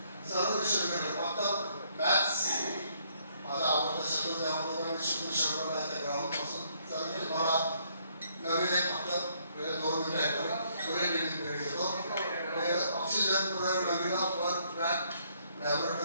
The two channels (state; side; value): inverted; both; correlation -0.68